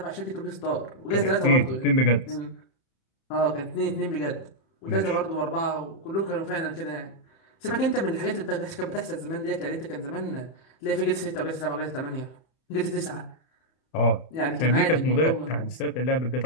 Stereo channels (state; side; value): late; right; 31 ms